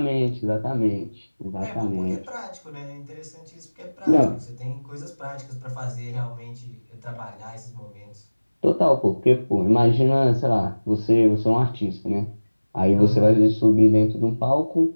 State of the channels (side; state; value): both; inverted; correlation -1.00